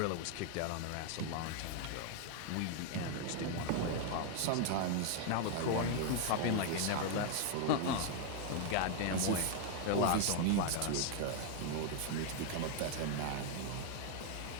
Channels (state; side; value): different; both; correlation 0.00